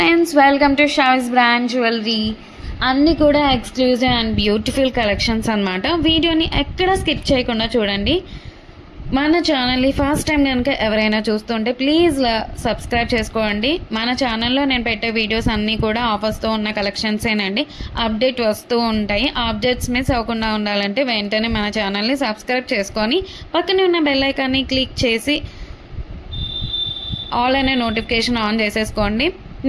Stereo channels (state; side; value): identical; both; correlation 1.00